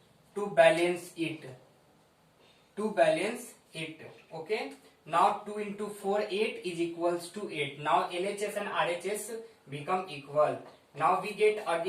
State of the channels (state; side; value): identical; both; correlation 1.00